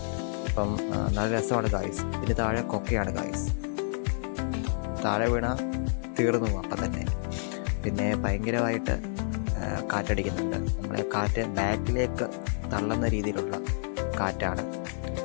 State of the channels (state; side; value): silent; right; digital silence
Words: അപ്പം നല്ല രസമാണ് ഗായ്സ്. ഇതിന് താഴെ കൊക്കയാണ് ഗായ്സ്. താഴെ വീണ തീർന്നു അപ്പം തന്നെ. പിന്നെ ഭയങ്കരമായിട്ട് കാറ്റടിക്കുന്നുണ്ട്. നമ്മളെ കാറ്റ് ബാക്കിലേക്ക് തള്ളുന്ന രീതിയിലുള്ള കാറ്റാണ്.